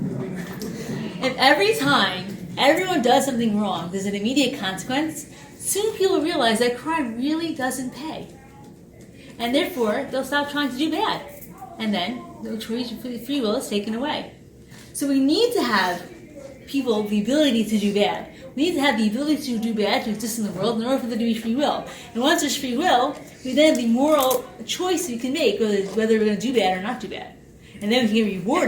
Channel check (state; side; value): identical; both; correlation 1.00